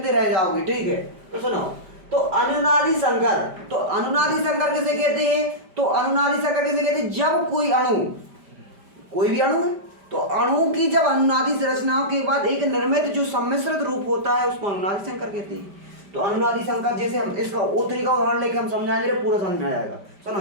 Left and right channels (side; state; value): left; late; 5.0 ms